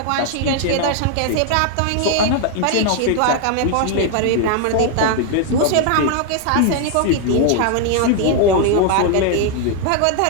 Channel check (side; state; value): both; different; correlation 0.00